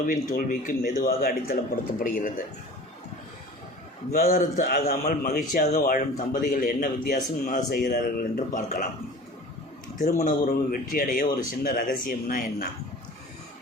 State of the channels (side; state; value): both; normal; correlation 0.41